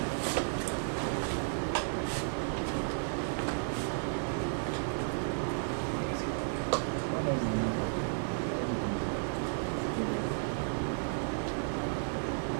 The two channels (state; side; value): silent; left; 55 dB below the other